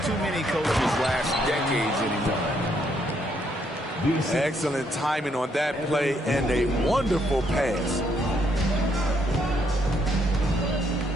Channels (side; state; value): both; normal; correlation 0.72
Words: too many coaches last decades anymore. Excellent timing on that play and a wonderful pass.